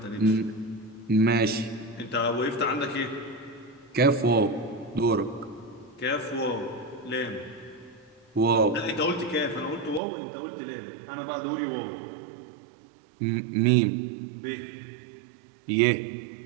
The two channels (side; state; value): left; drops out; at 10.0 s